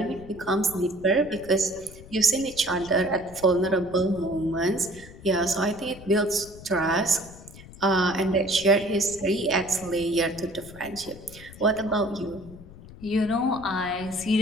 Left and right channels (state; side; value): noise; left; rumble, 18 dB below the sound